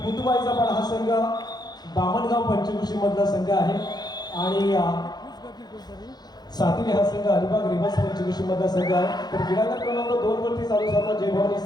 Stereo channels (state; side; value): late; right; 0.20 ms